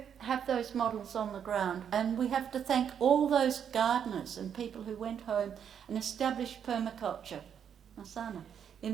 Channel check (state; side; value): quieter; left; 8.3 dB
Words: have those models on the ground, and we have to thank all those gardeners and people who went home and established permaculture, Masana,